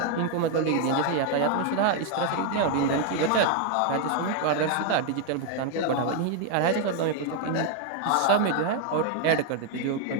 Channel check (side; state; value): both; different; correlation 0.01